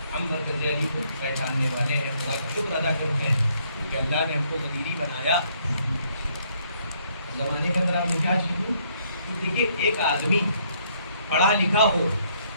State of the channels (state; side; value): inverted; both; correlation -0.69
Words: ہم مرکز علی کو پہچاننے والے ہیں. خدا کا شکر ادا کرتے ہیں کہ اللہ نے ہم کو غدیری بنایا. زمانے کے اندر آپ نے کیا چیز دیکھیے، ایک آدمی پڑھا لکھا ہو